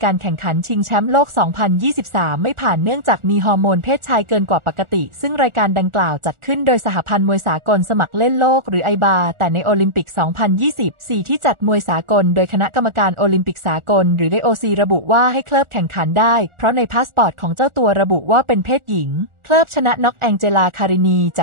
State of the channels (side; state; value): left; late; 1.4 ms